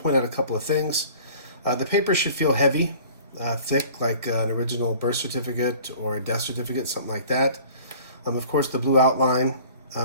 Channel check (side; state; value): both; inverted; correlation -0.47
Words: point out a couple of things. The paper should feel heavy. Thick, like an original birth certificate or a death certificate, something like that. Of course, the blue outline.